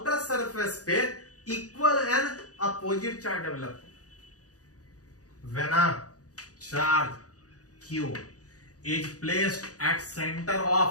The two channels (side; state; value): right; late; 0.67 ms